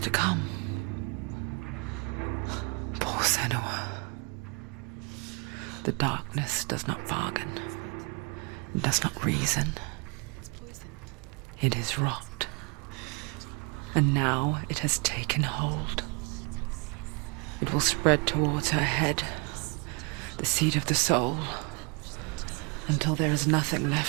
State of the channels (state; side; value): quieter; left; 32.2 dB